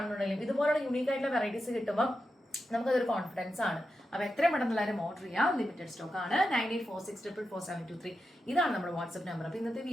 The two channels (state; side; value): normal; both; correlation 0.89